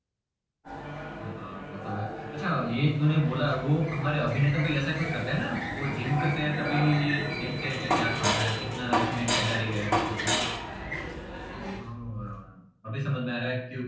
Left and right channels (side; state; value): both; identical; correlation 1.00